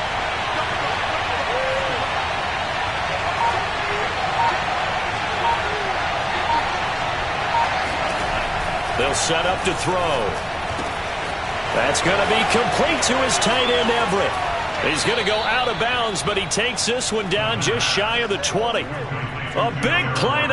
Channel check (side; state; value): both; identical; correlation 1.00